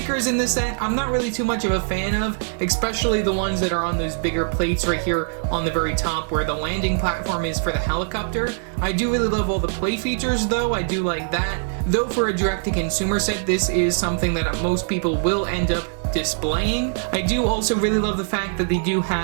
in this set, I'm not really too much of a fan of, especially the ones that are on those bigger plates right here on the very top where the landing platform is for the helicopter. I do really love all the play features though, I do like that. Though for a direct-to-consumer set, this is something that most people will end up displaying. I do also really love the fact that they do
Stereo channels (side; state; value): left; silent; 64 dB below the other